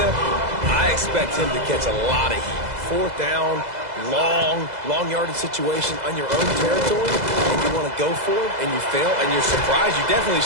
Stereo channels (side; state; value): left; late; 2.0 ms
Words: I expect him to catch a lot of heat. 4th down, long yardage situation on your own territory, and you want to go for it, and you fail, and you're surprised. You definitely